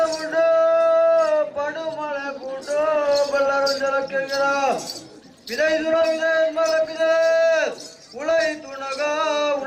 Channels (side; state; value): both; identical; correlation 1.00